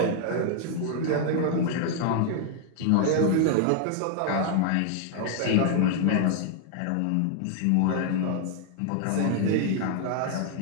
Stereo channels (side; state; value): both; different; correlation 0.00